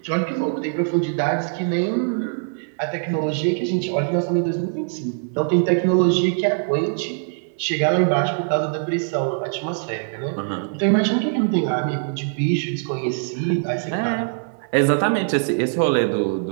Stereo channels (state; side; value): silent; left; 64 dB below the other